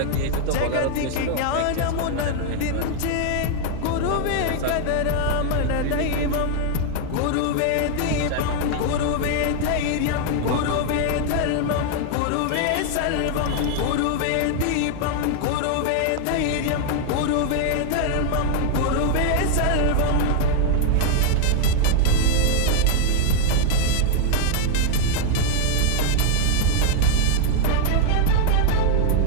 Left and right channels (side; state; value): both; different; correlation 0.00